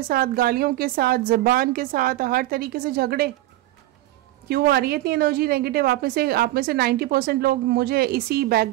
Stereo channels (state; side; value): quieter; left; 16.5 dB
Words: साथ, गालियों के साथ, ज़बान के साथ, हर तरीके से झगड़े। क्यों आ रही है इतनी एनर्जी नेगेटिव। आप में से 90% लोग मुझे इसी